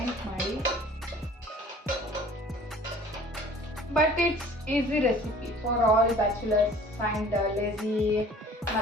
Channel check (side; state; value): both; normal; correlation 0.49